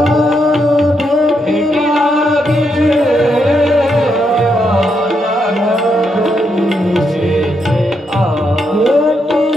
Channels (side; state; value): both; normal; correlation 0.80